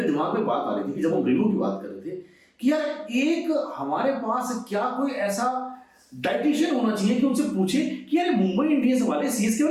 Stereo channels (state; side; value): identical; both; correlation 1.00